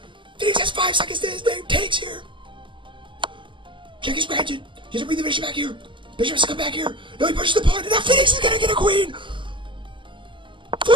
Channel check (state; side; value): late; left; 0.24 ms